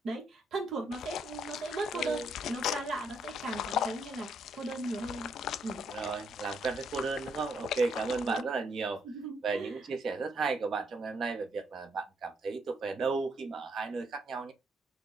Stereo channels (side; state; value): both; normal; correlation 0.73